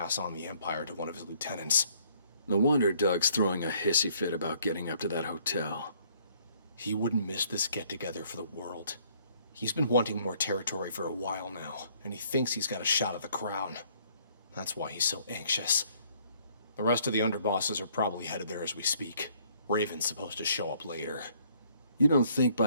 on the Empire to one of his lieutenants. No wonder Doug's throwing a hissy fit about getting up to that hotel. He wouldn't miss this get-together for the world. He's been wanting more territory for a while now, and he thinks he's got a shot at the crown. That's why he's so anxious. The rest of the underbosses are probably headed there as we speak. Raven's supposed to show up later. You don't think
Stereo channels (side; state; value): both; inverted; correlation -0.63